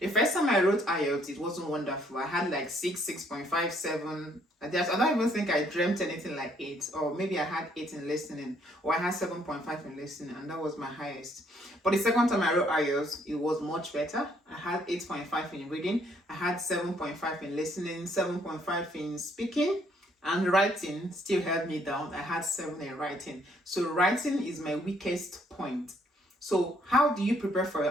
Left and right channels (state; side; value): normal; both; correlation 0.67